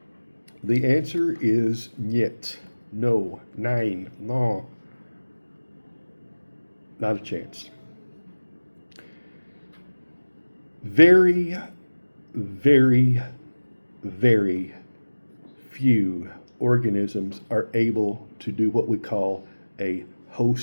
The answer is niet. No. Nein. No. Not a chance. Very, very, very few organisms are able to do what we call a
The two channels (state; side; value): inverted; both; correlation -1.00